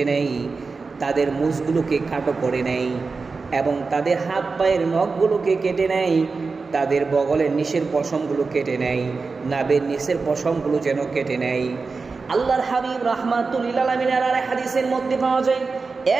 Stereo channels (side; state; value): left; quieter; 4.3 dB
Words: নেয়, তাদের মুছগুলোকে খাটো করে নেয় এবং তাদের হাত পায়ের নখগুলোকে কেটে নেয়, তাদের বগলের নিচের পশমগুলো কেটে নেয়, নাভের নিচের পশমগুলো যেন কেটে নেয়। আল্লাহর হাবিব রাহমাতুল্লিল আলামিনের আর হাদিসের মধ্যে পাওয়া যায়,